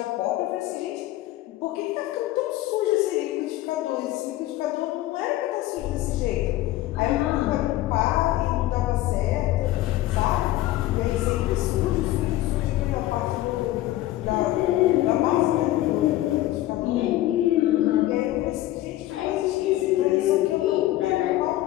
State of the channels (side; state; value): right; quieter; 15.6 dB